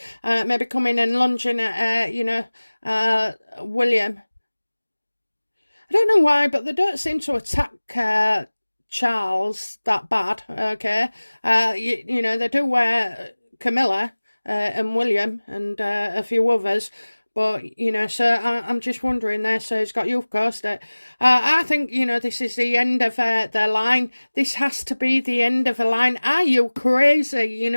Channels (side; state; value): both; inverted; correlation -1.00